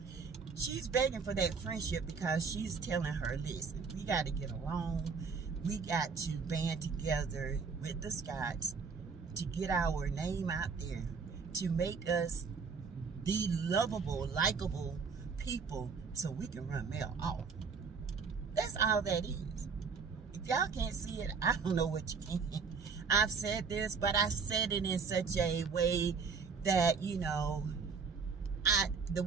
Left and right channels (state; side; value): quieter; left; 5.3 dB